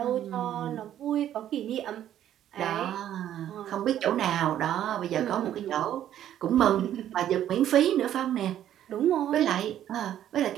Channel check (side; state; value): left; quieter; 11.2 dB